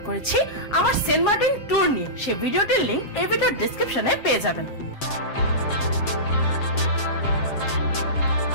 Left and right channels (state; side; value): late; right; 7.4 ms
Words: করেছি আমার সেন্ট মার্টিন ট্যুর নিয়ে। সেই ভিডিওটির লিংক এই ভিডিওর ডেসক্রিপশনে পেয়ে যাবেন।